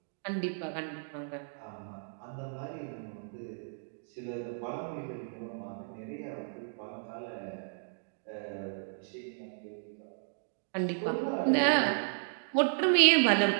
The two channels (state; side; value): silent; left; digital silence